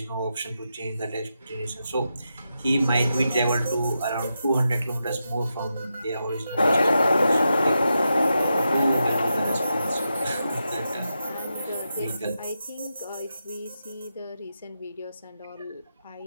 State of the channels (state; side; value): inverted; both; correlation -0.87